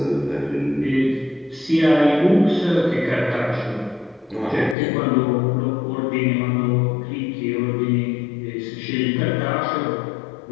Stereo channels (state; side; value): drops out; right; at 4.8 s